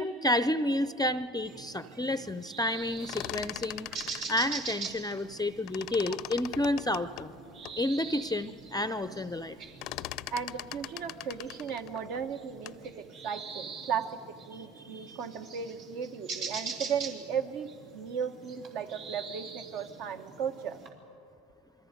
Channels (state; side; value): normal; both; correlation 0.48